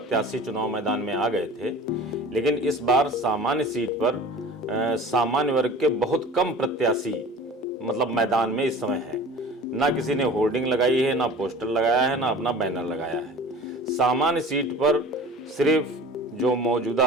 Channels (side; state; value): both; normal; correlation 0.41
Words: चुनाव मैदान में आ गए थे, लेकिन इस बार सामान्य सीट पर सामान्य वर्ग के बहुत कम प्रत्याशी मतलब मैदान में इस समय है। ना किसी ने होर्डिंग लगाई है, ना पोस्टर लगाया है, ना अपना बैनर लगाया है। सामान्य सीट पर सिर्फ जो